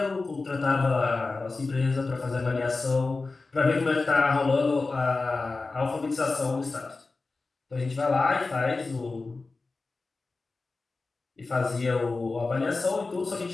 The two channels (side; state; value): right; quieter; 3.7 dB